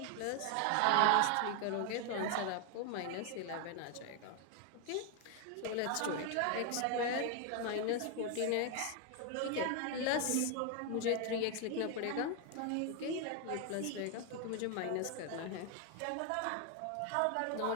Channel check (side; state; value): both; different; correlation 0.01